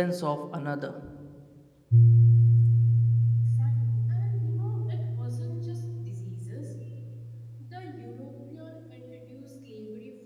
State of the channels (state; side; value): identical; both; correlation 1.00